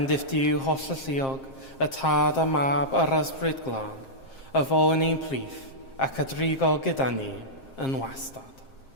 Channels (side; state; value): right; late; 7.5 ms